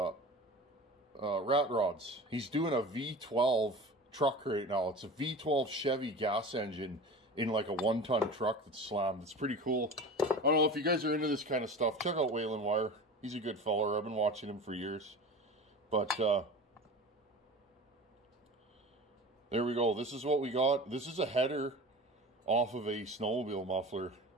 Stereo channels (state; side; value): normal; both; correlation 0.35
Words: rods. He's doing a V12 truck right now. It's a V12 Chevy gas engine in like a 1-ton truck that's slammed. It's pretty cool. I don't know if you guys are into this kind of stuff. Check out Whalen Wire. He's a good feller. I've been watching him for years. But there we go. This is what we got. This is a header off of a snowmobile muffler.